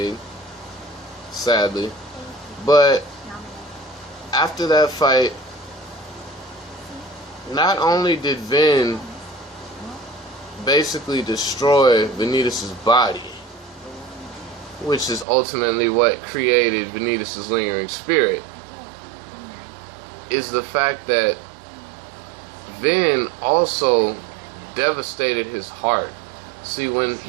sadly. But after that fight, not only did Vin basically destroy Vanitas' body, which is ultimately what created Vanitas' lingering spirit, is the fact that Vin also devastated his heart. See, when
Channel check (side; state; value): left; drops out; at 15.2 s